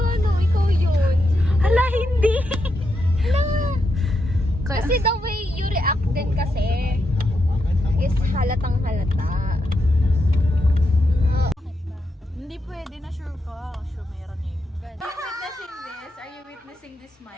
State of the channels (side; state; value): both; normal; correlation 0.83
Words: no, ikaw yun. Hala, hindi. Kasi the way you react din kasi is halatang halata. Hindi pwede na sure ka. Sure meron eh. Are you witnessing this? Are you witnessing this